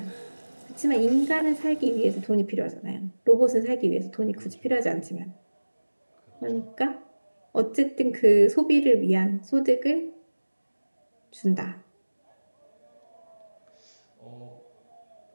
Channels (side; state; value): both; inverted; correlation -1.00